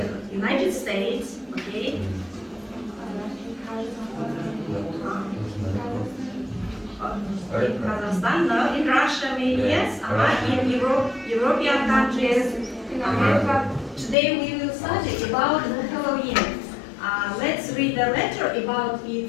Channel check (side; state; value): right; drops out; at 14.2 s